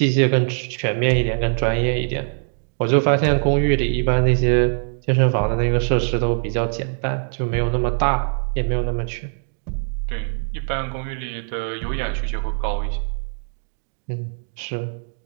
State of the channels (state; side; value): silent; left; 64 dB below the other